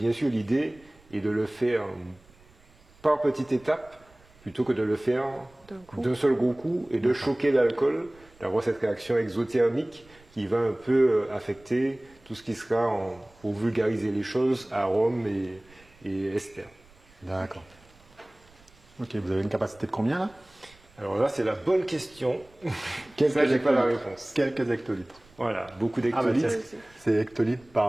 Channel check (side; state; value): right; noise; rumble, 28 dB below the sound